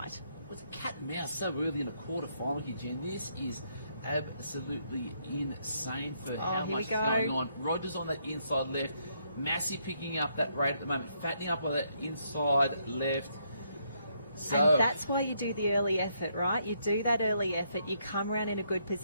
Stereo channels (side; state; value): both; inverted; correlation -0.74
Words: It's a cat and mouse so early in a quarter-final here, Jen. This is absolutely insane for how much is going on. Rogers on that inside left. Massey picking up that rate at the moment, fattening up on that inside left. So, and that's why you do the early effort, right? You do that early effort, you come around in a good